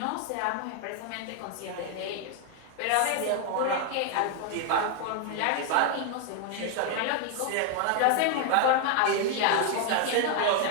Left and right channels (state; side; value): different; both; correlation 0.00